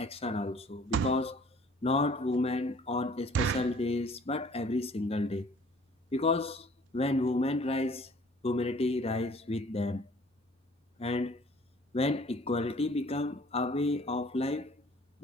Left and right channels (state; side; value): normal; both; correlation 0.53